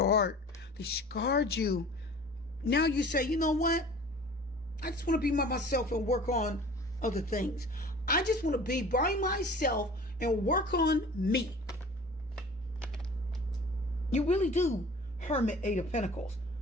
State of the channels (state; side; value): normal; both; correlation 0.44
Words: heart. They scarred you. Now you say, you know what? I just want to be by myself and work on other things. I just want to be by myself and work on me. You really do, Hermit, Eight of Pentacles.